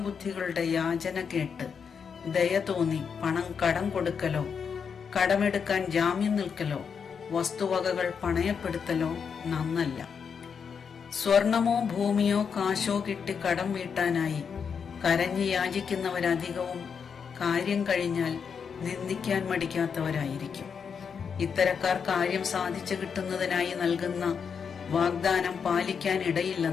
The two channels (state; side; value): quieter; right; 6.5 dB